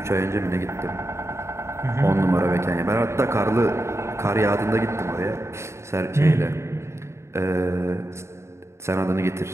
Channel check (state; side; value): late; left; 0.13 ms